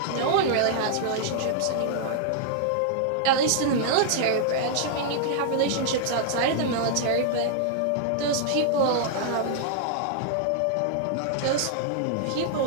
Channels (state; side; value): different; both; correlation -0.01